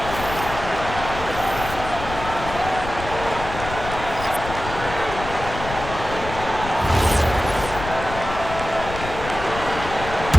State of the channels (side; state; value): left; noise; rumble, 9 dB below the sound